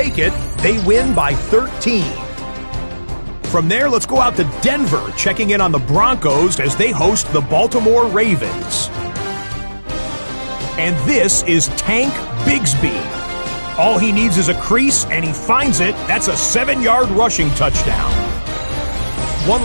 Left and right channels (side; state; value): both; inverted; correlation -1.00